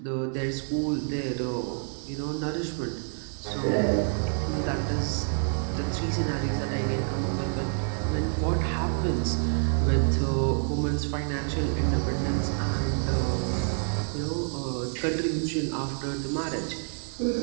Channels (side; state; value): left; silent; 58 dB below the other